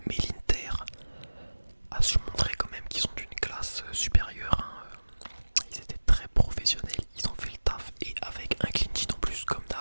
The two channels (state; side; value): inverted; both; correlation -1.00